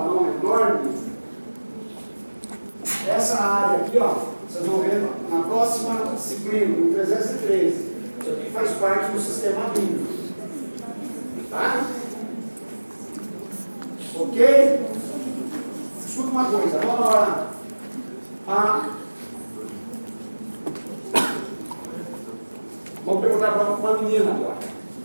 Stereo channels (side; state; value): both; inverted; correlation -1.00